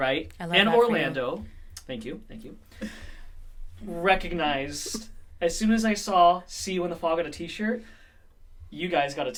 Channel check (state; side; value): identical; both; correlation 1.00